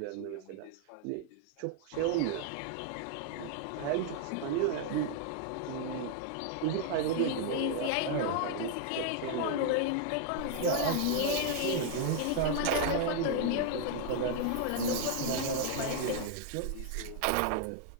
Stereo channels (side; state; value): both; different; correlation 0.00